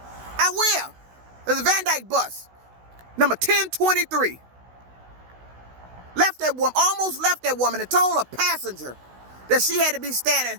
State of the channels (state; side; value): late; left; 16 ms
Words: I will. There's a Van Dyke bus, number 1023. Almost left that woman and told a passenger that she had to be